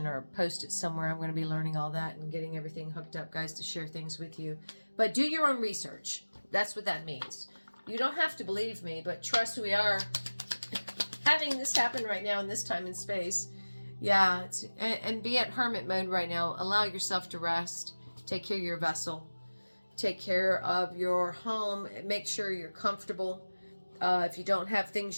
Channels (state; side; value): inverted; both; correlation -1.00